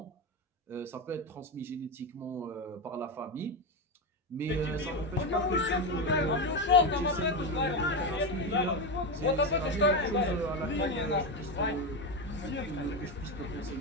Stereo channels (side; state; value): both; normal; correlation 0.13